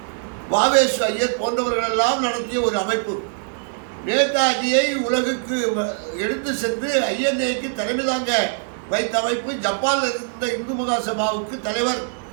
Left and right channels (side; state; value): left; silent; digital silence